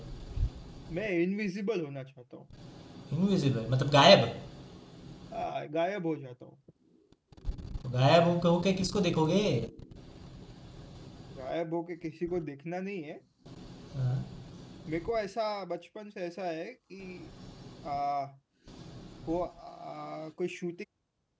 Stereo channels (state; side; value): identical; both; correlation 1.00